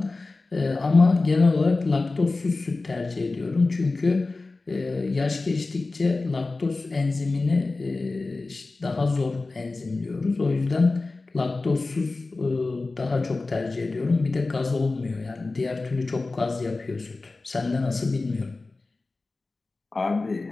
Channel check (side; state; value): right; quieter; 3.5 dB